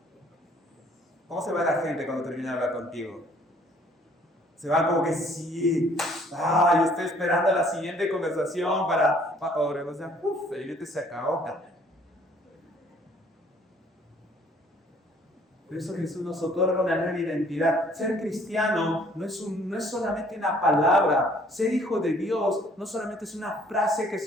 ¿Cómo se va la gente cuando termina de hablar contigo? Se va como que sí, yo estoy esperando la siguiente conversación para o sea, el evento se acabó. Por eso Jesús nos otorga una nueva identidad. Ser cristiano no es solamente una palabra. Ser hijo de Dios no solamente es una frase que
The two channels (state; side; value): normal; both; correlation 0.59